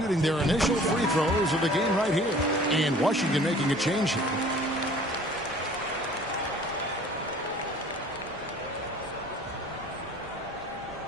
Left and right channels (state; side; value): normal; both; correlation 0.50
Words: their initial free throws of the game right here. And Washington making a change here.